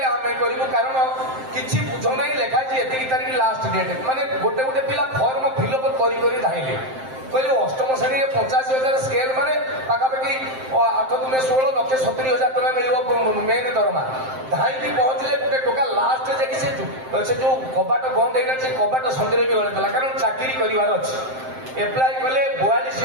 ଆମେ କରିବୁ। କାରଣ କିଛି ବୁଝ ନାହିଁ ଲେଖା ହେଇଛି ଏତିକି ତାରିଖ ଲାଷ୍ଟ ଡେଟ୍। ମାନେ ଗୋଟେ ପିଲା ଫର୍ମ ଫିଲ୍ଅପ୍ କରି ଧାଇଁଲେ କହିଲେ 8ମ ଶ୍ରେଣୀରେ 85,000 ସ୍କେଲ ମାନେ ପାଖାପାଖି 8×16 1,70,000 ଟଙ୍କା ମିଳିବ ମେନ୍ ଦରମା। ଧାଇଁକି ପହଞ୍ଚିଲେ ଗୋଟେ ଟୋକା ଲାଷ୍ଟ ଯାଇକି ସେ ଯୋଉ କବାଟ ବନ୍ଦ ହେଇଗଲା ସେ କବାଟ ସନ୍ଧ୍ୟାରେ ବି ଗଳେଇଦେଲା। କାରଣ ଚାକିରି କରିବାର ଅଛି। ଏପ୍ଲାଏ କଲେ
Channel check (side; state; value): left; late; 7.7 ms